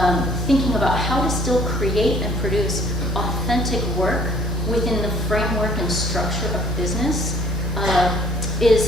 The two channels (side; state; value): both; normal; correlation 0.58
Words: thinking about how to still create and produce authentic work within the framework and structure of business